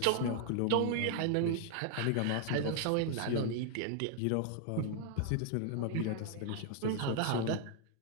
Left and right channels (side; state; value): both; different; correlation 0.00